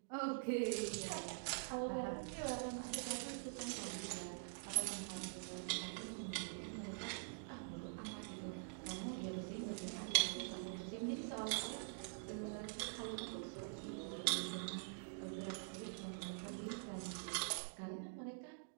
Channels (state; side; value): silent; left; digital silence